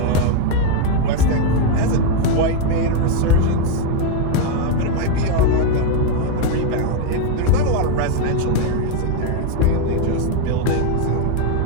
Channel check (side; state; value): both; different; correlation 0.01